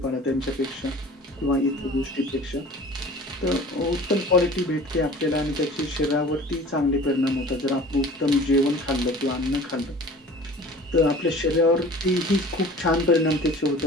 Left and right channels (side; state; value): both; normal; correlation 0.43